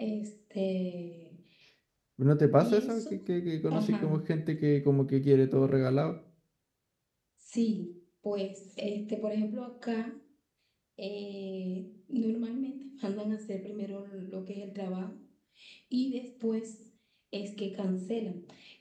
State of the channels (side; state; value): both; identical; correlation 1.00